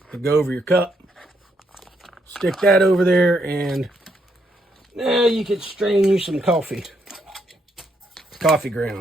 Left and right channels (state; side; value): normal; both; correlation 0.76